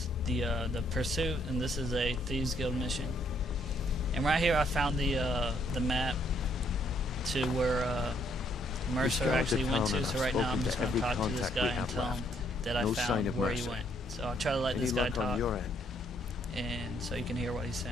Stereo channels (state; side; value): normal; both; correlation 0.70